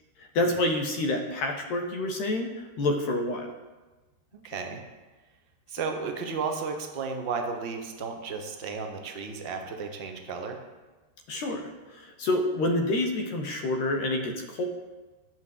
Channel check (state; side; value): late; right; 13 ms